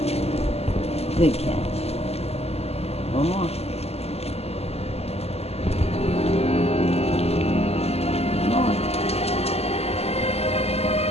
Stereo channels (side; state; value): right; late; 0.30 ms